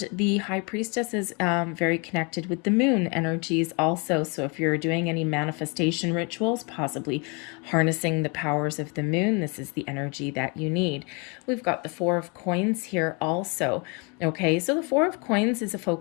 the High Priestess is very connected with the moon energies also. So if you're doing any manifestation rituals, possibly harnessing the powers of the moon, this is the energy that you need. We've got the Four of Coins here also. Okay, so the Four of Coins is a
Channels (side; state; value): right; quieter; 31.8 dB